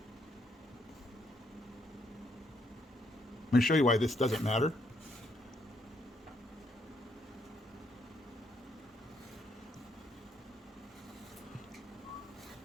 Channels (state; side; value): normal; both; correlation 0.74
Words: I'm going to show you why this doesn't matter.